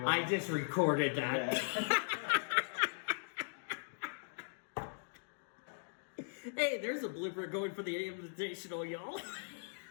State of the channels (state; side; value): silent; right; digital silence